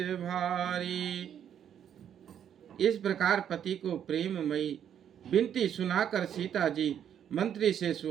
भारी। इस प्रकार पति को प्रेममयी विनती सुनाकर सीता जी मंत्री से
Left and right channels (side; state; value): left; quieter; 9.2 dB